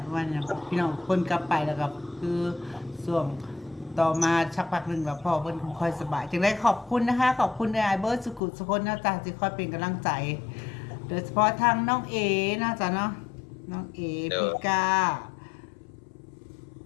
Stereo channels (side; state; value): right; drops out; at 8.4 s